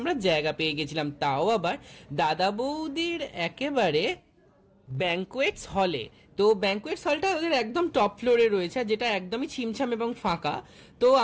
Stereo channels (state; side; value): identical; both; correlation 1.00